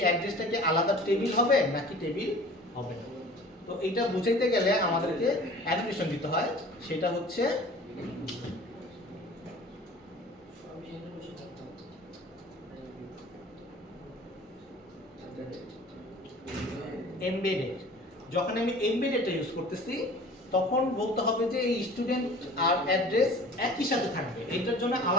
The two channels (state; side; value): normal; both; correlation 0.44